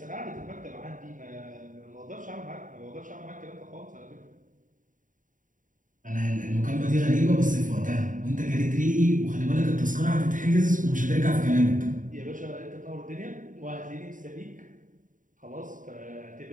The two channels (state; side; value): late; left; 0.38 ms